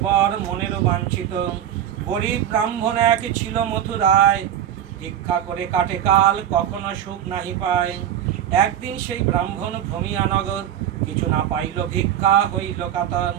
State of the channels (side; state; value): left; quieter; 10.5 dB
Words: বর মনেরও বাঞ্ছিত। গরিব ব্রাহ্মণ এক ছিল মথুরায় ভিক্ষা করে কাটে কাল কখনো সুখ নাহি পায়। একদিন সেই ব্রাহ্মণ ভ্রমিয়া নগর কিছু না পাইল ভিক্ষা হইল কাতর।